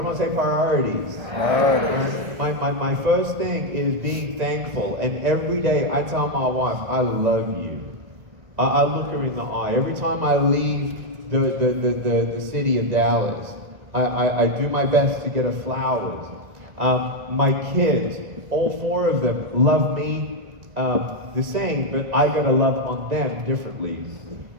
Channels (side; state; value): left; late; 1.9 ms